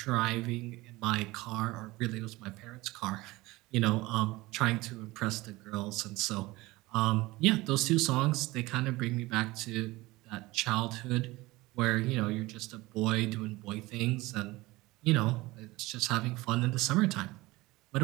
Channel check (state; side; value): quieter; left; 20.4 dB